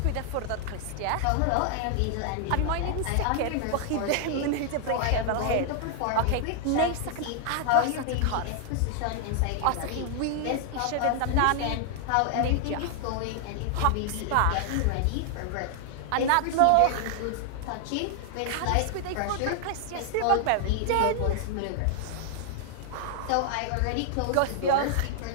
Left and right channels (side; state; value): both; different; correlation 0.00